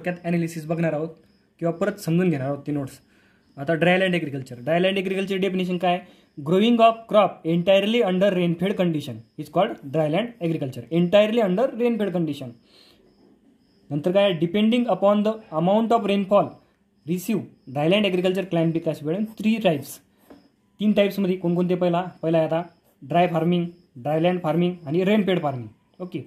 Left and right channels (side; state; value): both; identical; correlation 1.00